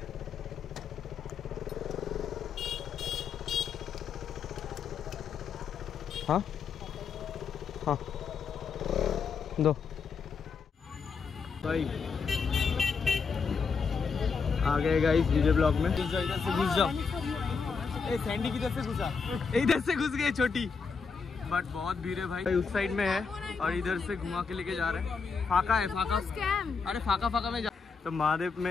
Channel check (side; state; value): right; quieter; 5.5 dB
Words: हाँ हाँ दो भाई। आ गए गाइस डीजे ब्लॉक में। इधर से घुस जाओ। ए सैंडी किधर से घुसा, इधर से घुस गए छोटी। बट बहुत भीड़ है भाई, उस साइड में है और इधर से घुमा के लेके जा रहे हैं। फाका है, फाका अरे फाका में जा। तो महादेव